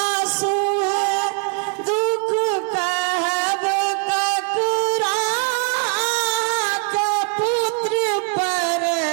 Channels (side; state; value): left; quieter; 37.7 dB